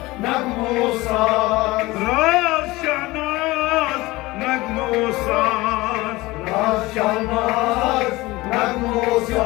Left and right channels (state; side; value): quieter; right; 20.4 dB